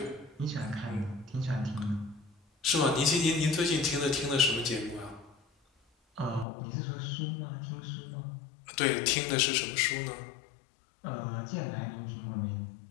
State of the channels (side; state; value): right; drops out; at 6.5 s